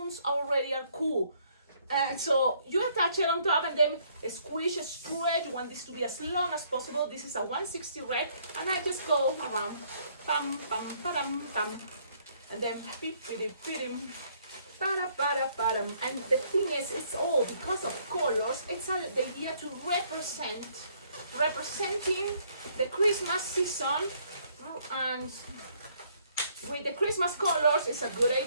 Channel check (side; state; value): both; inverted; correlation -0.66